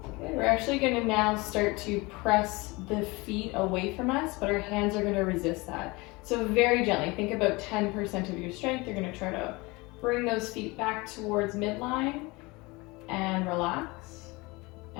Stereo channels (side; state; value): right; quieter; 24.3 dB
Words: Okay, we're actually going to now start to press the feet away from us, but our hands are going to resist that. So very gently, think about 10% of your strength. You're going to try to bring those feet back towards midline and relax.